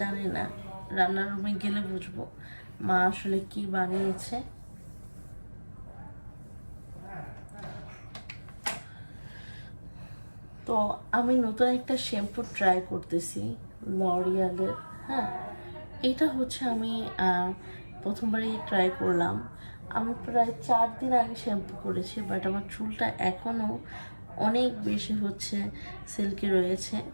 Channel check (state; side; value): inverted; both; correlation -1.00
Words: জানি না, রান্নার রুমে গেলে বুঝবো মা আসলে কি বানিয়েছে। তো আমি নতুন একটা শ্যাম্পু ট্রাই করতেছি, লরিয়ালের। হ্যাঁ, এটা হচ্ছে আমি প্রথমবারই ট্রাই করলাম। আমি প্রায় 4 দিন আগে শ্যাম্পু করেছি, বাট আমার চুলটা এখনও অনেক বেশি হচ্ছে সিল্কি রয়েছে।